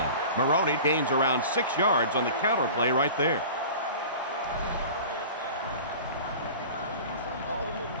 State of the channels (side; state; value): both; inverted; correlation -0.39